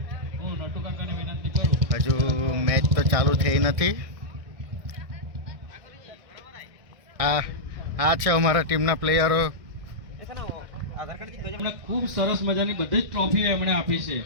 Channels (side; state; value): left; late; 1.6 ms